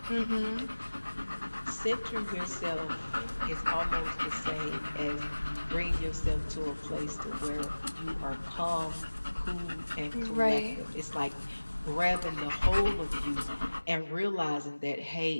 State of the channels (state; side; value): inverted; both; correlation -1.00